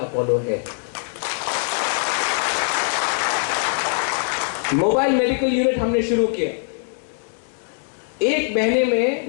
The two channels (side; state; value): right; silent; 64 dB below the other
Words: है। मोबाइल मेडिकल यूनिट हमने शुरू किया। एक महीने